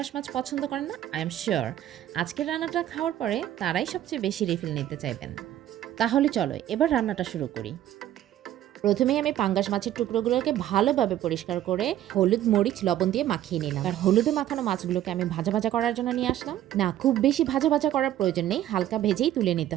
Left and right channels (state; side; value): quieter; left; 12.5 dB